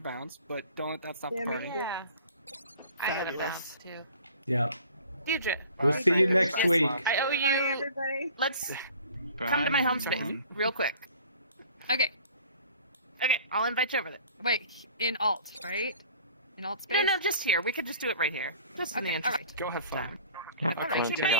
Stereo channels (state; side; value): inverted; both; correlation -0.49